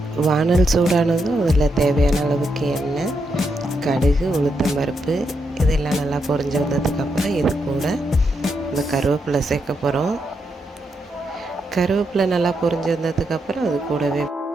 வானல் சூடானதும் அதில் தேவையான அளவுக்கு எண்ணெய், கடுகு, உளுத்தம்பருப்பு இதெல்லாம் நல்லா பொரிஞ்சு வந்ததுக்கப்புறம் இது கூட இந்த கருவேப்பிலை சேர்க்க போகிறோம். கருவேப்பிலை நல்லா பொரிஞ்சு வந்ததுக்கப்புறம் அது கூடவே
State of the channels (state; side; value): normal; both; correlation 0.82